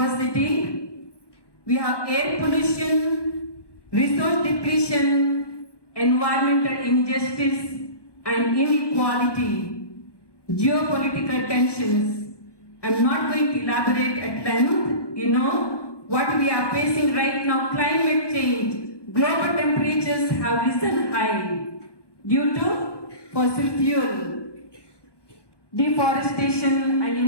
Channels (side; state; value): right; late; 1.2 ms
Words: We have air pollution, resource depletion, environmental injustice, and inequality, geopolitical tensions. I'm not going to elaborate at length. You know what we are facing right now, climate change. Global temperatures have risen high due to fossil fuel, deforestation and